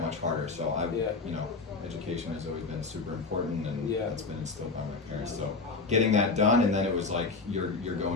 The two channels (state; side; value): quieter; right; 4.0 dB